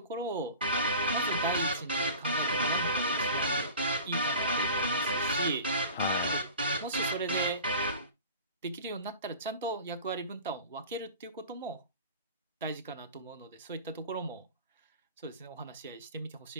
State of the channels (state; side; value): inverted; both; correlation -0.38